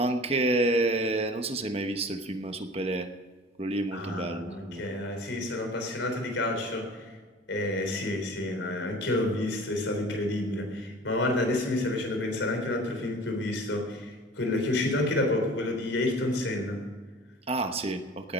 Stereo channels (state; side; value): normal; both; correlation 0.43